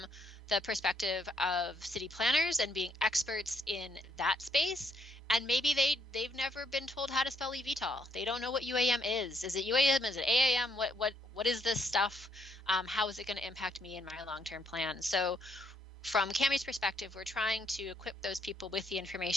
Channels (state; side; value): normal; both; correlation 0.72